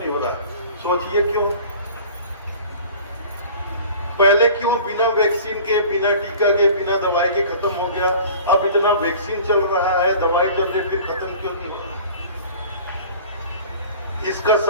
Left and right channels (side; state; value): both; inverted; correlation -0.43